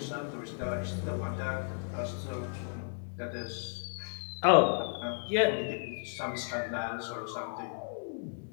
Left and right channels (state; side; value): silent; right; digital silence